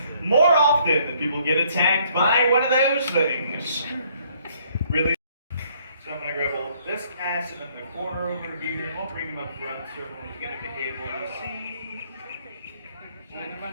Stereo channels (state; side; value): inverted; both; correlation -0.65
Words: More often than people get attacked by one of those things. Really? So I'm going to grab a little this acid in the corner over here, and I'll bring him up front so everyone's going to be able to see. Come